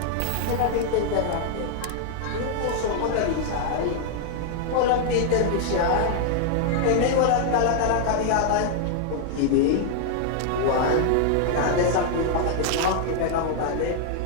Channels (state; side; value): different; both; correlation 0.00